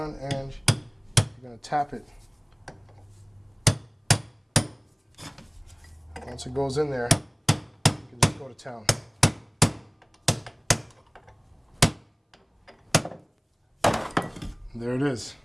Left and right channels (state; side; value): identical; both; correlation 1.00